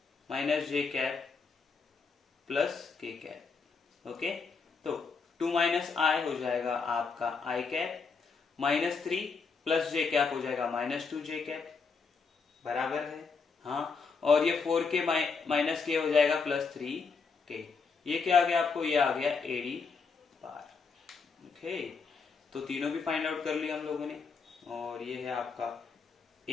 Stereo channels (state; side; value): quieter; right; 5.0 dB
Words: माइनस जे cap plus K cap. Okay, तो 2 माइनस आई हो जाएगा आपका I cap minus 3 plus J cap हो जाएगा माइनस 2 जे कैप, बराबर है। हाँ, और ये 4 के माइनस के हो जाएगा प्लस 3 के। ये क्या आ गया आपको, ये आ गया एडी बार। ओके, तो तीनों भी फाइंड आउट कर लिया हम लोगों ने, और ये है आपका